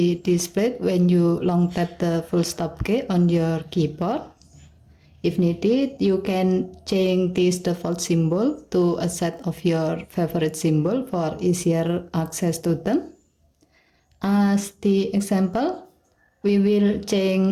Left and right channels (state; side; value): identical; both; correlation 1.00